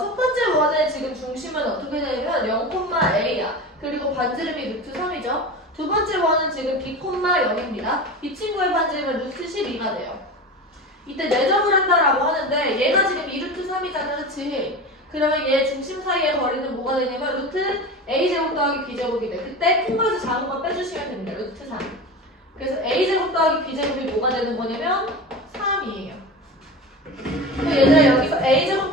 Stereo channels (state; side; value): normal; both; correlation 0.29